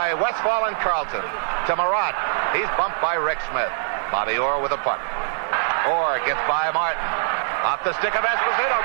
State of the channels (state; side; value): silent; left; digital silence